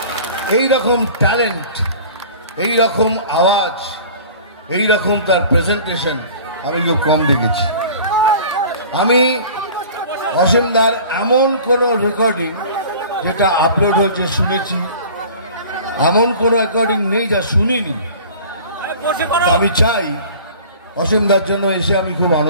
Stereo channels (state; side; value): inverted; both; correlation -0.44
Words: এইরকম ট্যালেন্ট, এইরকম আওয়াজ, এইরকম তার প্রেজেন্টেশন আমি খুব কম দেখেছি। আমি অসীমদার এমন কোনো রেকর্ডিং যেটা আপলোড হয়েছে শুনেছি, এমন কোনো রেকর্ডিং নেই যা শুনিনি। আমি চাই অসীমদার জন্য এসে আমি খুব